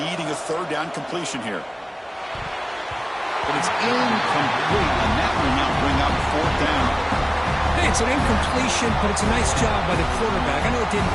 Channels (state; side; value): identical; both; correlation 1.00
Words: a third down completion here. But it's incomplete, and that will not bring up fourth down. Hey, it's an incompletion, but it's a nice job by the quarterback. I know it didn't